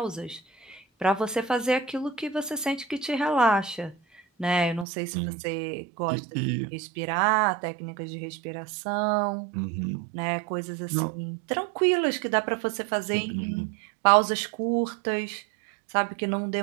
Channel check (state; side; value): drops out; left; at 4.9 s